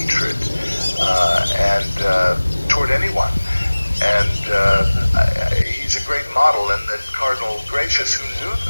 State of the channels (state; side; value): inverted; both; correlation -1.00